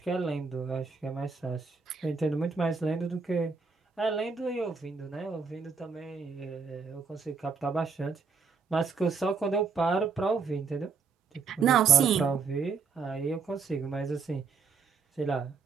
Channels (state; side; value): quieter; left; 5.3 dB